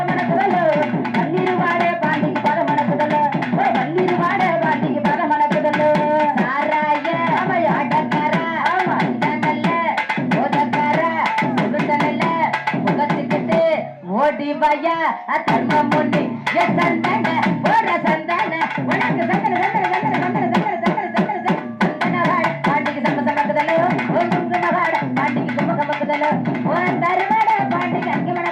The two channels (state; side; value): identical; both; correlation 1.00